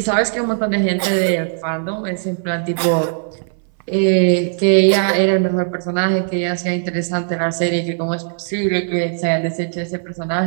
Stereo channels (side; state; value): left; silent; 60 dB below the other